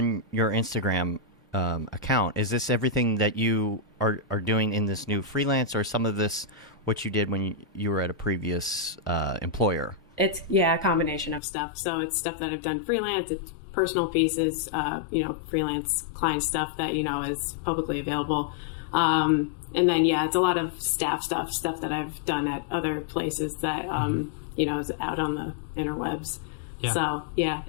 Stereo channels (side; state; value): right; drops out; at 11.4 s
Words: your Instagram account, is this everything that you are doing in this new freelance, or some of this what you did when you were at a previous employer? It's a combination of stuff. So it's stuff that I've done freelance, it's personal pieces, freelance client stuff that is publicly available, and then it's a lot of stuff that I've done at other places that is out on the interwebs. So